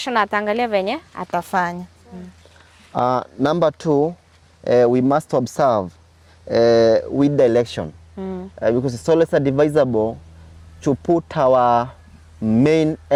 ataangalia venye atafanya. Number two, we must observe with direction, because it's always advisable to put our main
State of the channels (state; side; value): identical; both; correlation 1.00